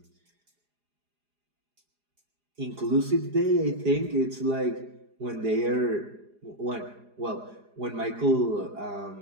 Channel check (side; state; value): left; late; 4.9 ms